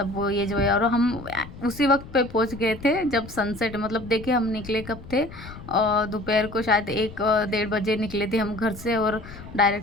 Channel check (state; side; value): noise; left; rumble, 15 dB below the sound